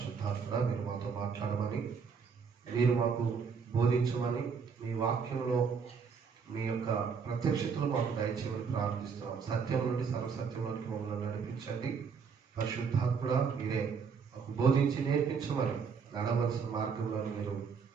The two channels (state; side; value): quieter; left; 5.9 dB